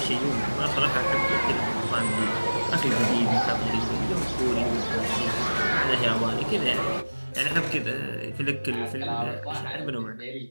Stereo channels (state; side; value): inverted; both; correlation -1.00